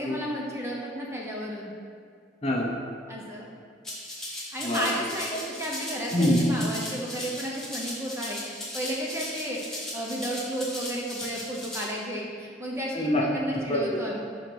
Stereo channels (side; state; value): both; normal; correlation 0.51